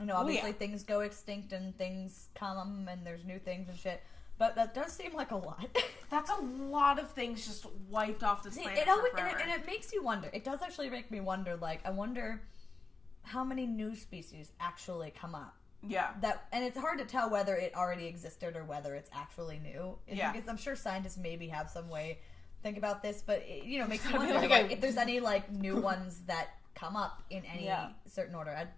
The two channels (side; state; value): right; quieter; 4.0 dB